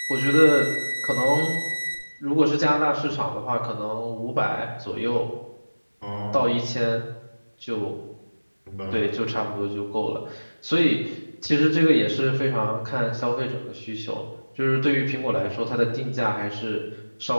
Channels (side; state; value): both; inverted; correlation -1.00